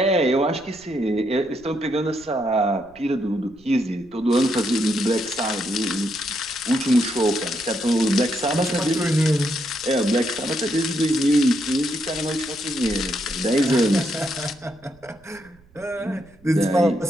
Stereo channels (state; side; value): noise; right; rumble, 28 dB below the sound